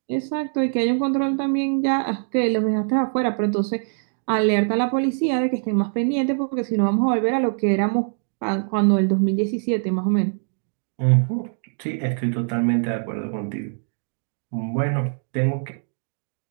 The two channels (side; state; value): left; silent; 63 dB below the other